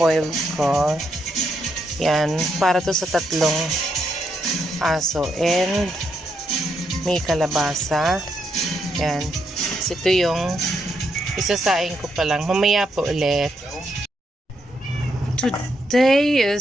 ko. Yan, para to sa 3 aso. And may kalabasa. Yan. So, ito yung isasaing ko pa lang. Mamaya po ulit. Today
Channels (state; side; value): normal; both; correlation 0.79